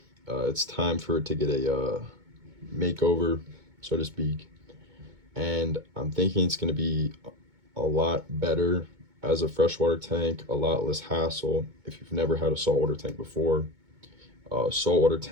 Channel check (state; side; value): late; left; 2.2 ms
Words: It's time for it to get a makeover, so to speak. And I'm thinking it's going to be a lot better as a freshwater tank, a lot less hassle. If you've never had a saltwater tank before, saltwater